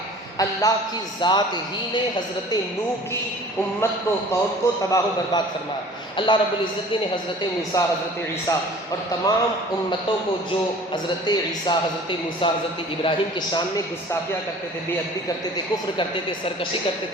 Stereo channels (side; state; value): both; normal; correlation 0.47